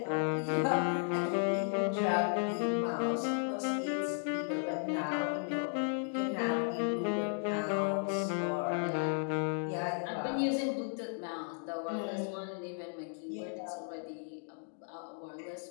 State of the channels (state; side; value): silent; right; 55 dB below the other